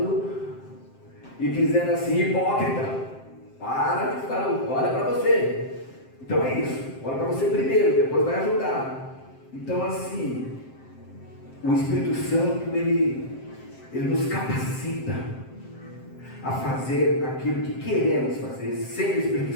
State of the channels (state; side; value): late; right; 7.6 ms